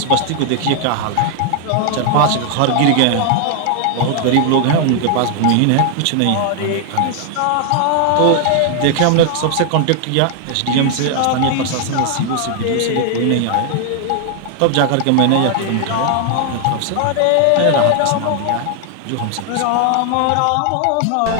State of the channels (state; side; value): different; both; correlation 0.00